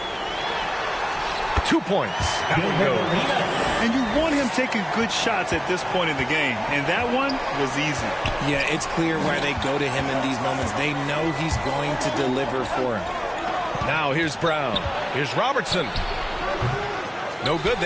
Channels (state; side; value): identical; both; correlation 1.00